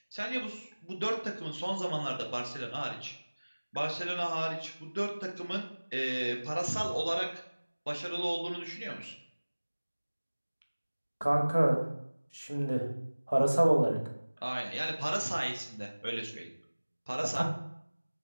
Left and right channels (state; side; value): inverted; both; correlation -1.00